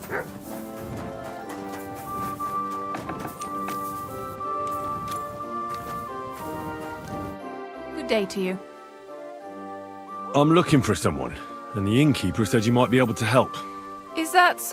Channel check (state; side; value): identical; both; correlation 1.00